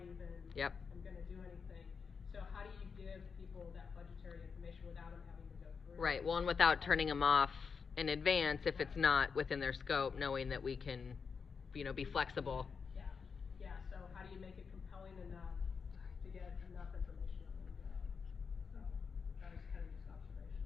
even. Yep. I'm gonna do anything. So how do you give people that budgetary information without them having to go through? Right, well, and without turning them off in advance if it's not within their scope, knowing that we can, you know, be flexible. Yeah, so how do you make it compelling enough to get enough information on them to go? So, that was kind of just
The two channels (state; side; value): quieter; right; 5.7 dB